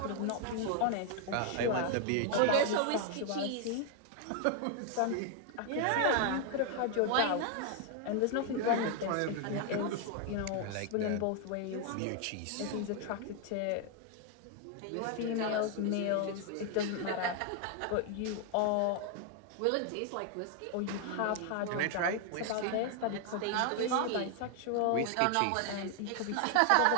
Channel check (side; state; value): both; different; correlation 0.00